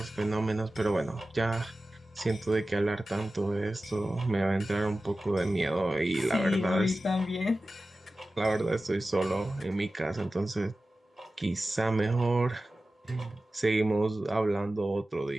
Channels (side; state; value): both; normal; correlation 0.95